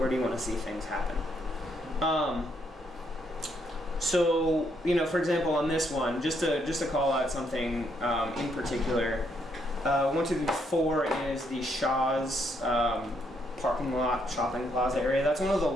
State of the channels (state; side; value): normal; both; correlation 0.74